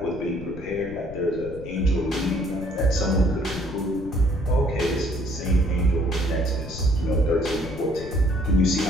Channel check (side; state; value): left; noise; rumble, 13 dB below the sound